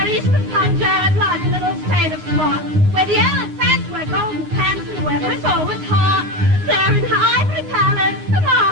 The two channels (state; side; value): late; left; 9.7 ms